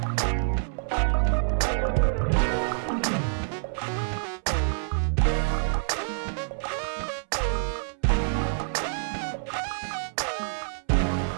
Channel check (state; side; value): silent; left; 60 dB below the other